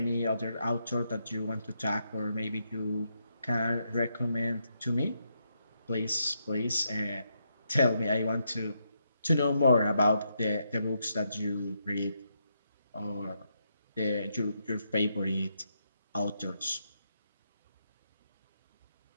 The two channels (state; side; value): inverted; both; correlation -0.80